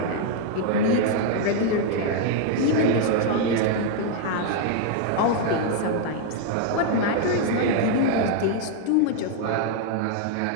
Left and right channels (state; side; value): different; both; correlation 0.00